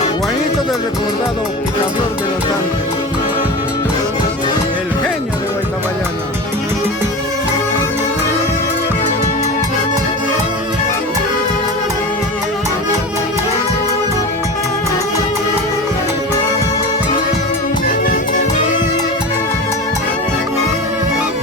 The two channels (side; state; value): both; normal; correlation 0.29